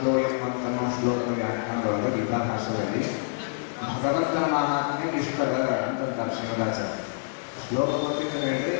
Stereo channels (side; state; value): right; silent; digital silence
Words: ಅಂತನ್ನೋ ಶ್ಲೋಕದ ವ್ಯಾಖ್ಯಾನದೊಳಗೆ ಗೀತಾ ಭಾಷೆಯಲ್ಲಿ ಭಗವಂತನ ಮಹಾತ್ಮೆ ಇಷ್ಟದ ಅಂತಂತಾರೆ ಶ್ರೀಮದಾಚಾರ್ಯ. ಶ್ಲೋಕ ಗೊತ್ತಿದ್ರೆ ಹೇಳ್ರಿ,